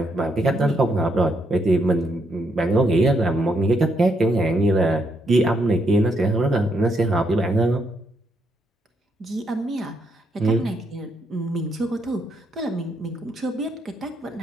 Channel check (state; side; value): normal; both; correlation 0.76